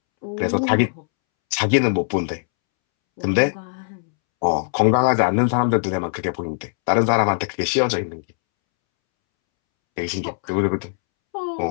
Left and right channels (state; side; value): silent; right; 65 dB below the other